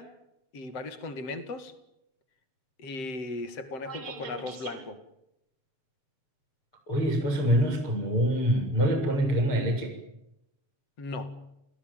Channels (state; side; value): late; right; 6.8 ms